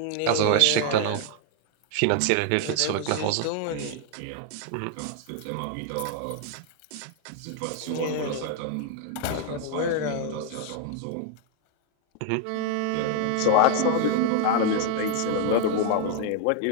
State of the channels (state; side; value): different; both; correlation 0.00